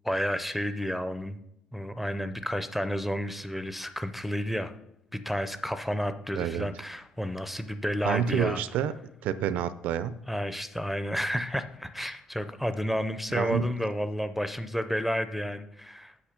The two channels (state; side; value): normal; both; correlation 0.81